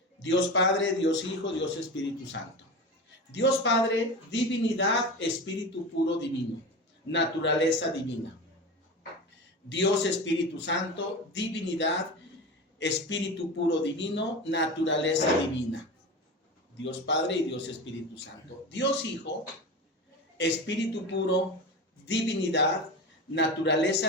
Dios Padre, Dios Hijo, Dios Espíritu Santo. Dios Padre, divinidad, espíritu puro divino, naturaleza divina. Dios Espíritu Santo, divinidad, espíritu puro divino, naturaleza divina. Dios Padre y Dios Espíritu Santo. Dios Hijo, espíritu puro, divinidad,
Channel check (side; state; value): both; normal; correlation 0.27